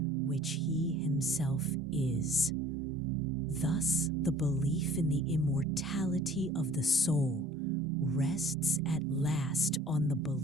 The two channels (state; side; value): normal; both; correlation 0.50